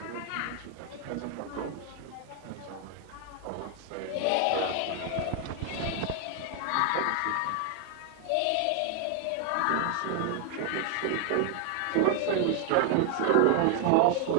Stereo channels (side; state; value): both; different; correlation 0.00